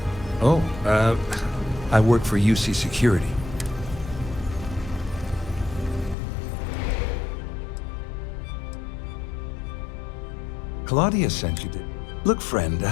Oh, I work for UC Security. Claudia sent you to... Look, friend,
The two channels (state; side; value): drops out; right; at 6.2 s